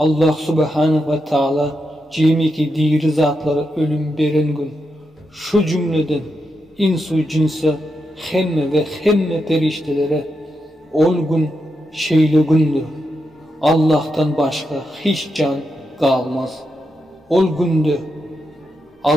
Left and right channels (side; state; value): both; normal; correlation 0.85